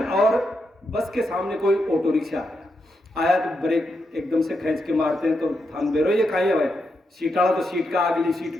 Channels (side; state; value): both; normal; correlation 0.84